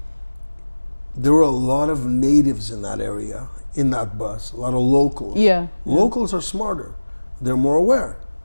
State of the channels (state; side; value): inverted; both; correlation -1.00